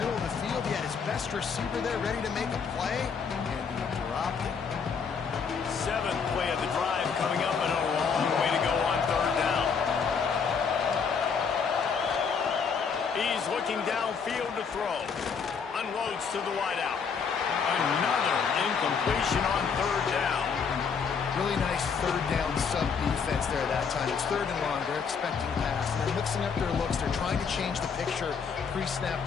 of the field. He had his best receiver there ready to make a play, and he dropped it. 7th play of the drive coming up, and a long way to go on third down. He's looking downfield to throw. Unloads to the wideout. Another incompletion on third down. Really nice third down sub-defense there that time. It's 3rd and long. They're expecting pass. They're mixing up their looks. They're trying to change the picture pre-snap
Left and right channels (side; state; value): right; quieter; 6.0 dB